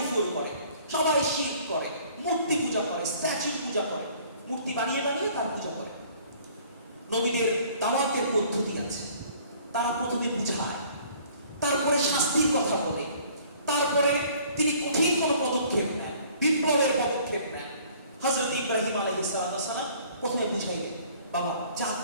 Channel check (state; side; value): inverted; both; correlation -0.55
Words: করে সবাই শিরক করে মূর্তি পূজা করে স্ট্যাচু পূজা করে মূর্তি বানিয়ে তার পূজা করে নবীদের দাওয়াতের পদ্ধতি আছে তারা প্রথমে বুঝায় তারপরে শাস্তির কথা বলে তারপরে তিনি কঠিন কোনো পদক্ষেপ নেন বিপ্লবের পদক্ষেপ নেন হযরত ইব্রাহিম আলাইহিস সালাম প্রথমে বুঝাইলেন বাবা যা